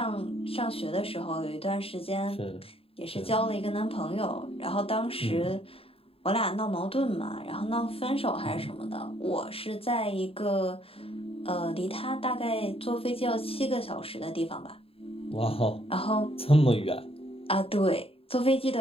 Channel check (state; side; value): late; right; 0.27 ms